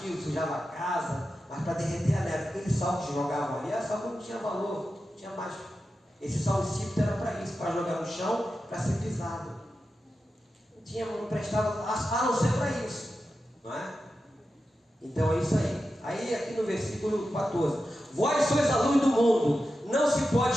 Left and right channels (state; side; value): normal; both; correlation 0.91